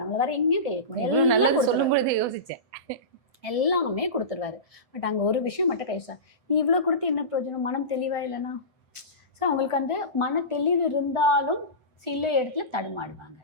நம்மள வேற எங்கேயும் கை வைக்க முடியாது. யோசிச்சேன், எல்லாமே கொடுத்துருவாரு. பட் அங்க ஒரு விஷயம் மட்டும் கைசா, நீ இவ்வளவு கொடுத்து என்ன பிரயோஜனம், மனம் தெளிவா இல்லைன்னா. ஸோ அவங்களுக்கு அந்த மன தெளிவு இருந்தாலும் சில இடத்துல தடுமாடுவாங்க,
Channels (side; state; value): left; late; 7.9 ms